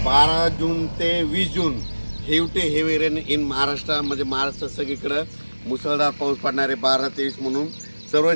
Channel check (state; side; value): inverted; both; correlation -1.00